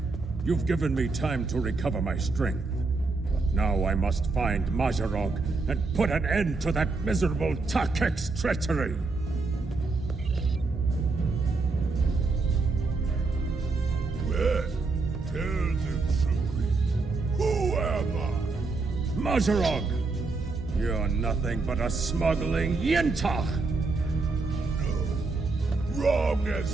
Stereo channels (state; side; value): quieter; left; 3.8 dB